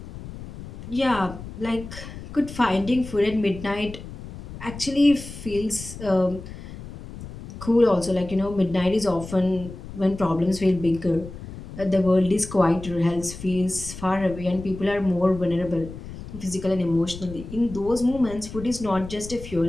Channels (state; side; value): noise; left; rumble, 13 dB below the sound